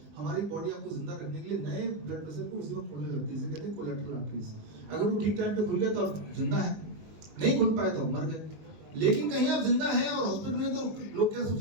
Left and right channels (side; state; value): left; late; 19 ms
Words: हमारी बॉडी आपको जिंदा रखने के लिए नए ब्लड वेसल को उसी वक्त खोलने लगती है, इसे कहते हैं कोलेटरल आर्टरीज। अगर वो ठीक टाइम पे खुल गया तो आप जिंदा है, नहीं खुल पाए तो मर गए। लेकिन कहीं आप जिंदा हैं और हॉस्पिटल में, तो लोग क्या